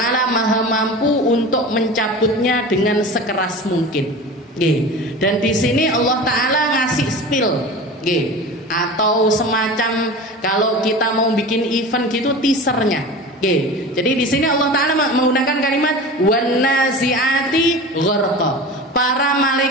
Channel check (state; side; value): normal; both; correlation 0.33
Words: Maha mampu untuk mencabutnya dengan sekeras mungkin. Dan di sini Allah taala ngasih spill, atau semacam kalau kita mau bikin event gitu teasernya. Jadi di sini Allah taala menggunakan kalimat wan nazi'ati gharqa, para